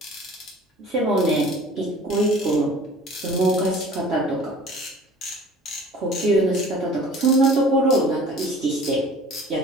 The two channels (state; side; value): normal; both; correlation 0.47